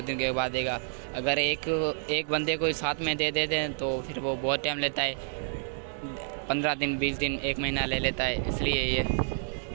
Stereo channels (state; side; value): silent; left; digital silence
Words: दिन के बाद देगा। अगर एक बंदे को साथ में दे देते हैं तो फिर वो बहुत टाइम लेता है, 15 दिन 20 दिन 1 महीना ले लेता है, इसलिए ये।